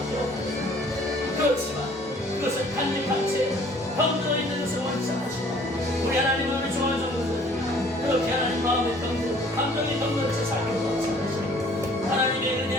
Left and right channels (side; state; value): both; normal; correlation 0.55